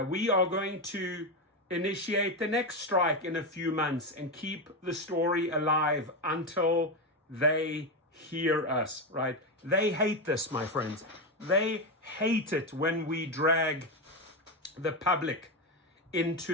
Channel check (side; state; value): both; normal; correlation 0.12